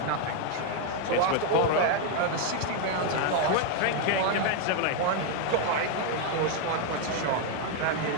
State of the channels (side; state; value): both; different; correlation 0.01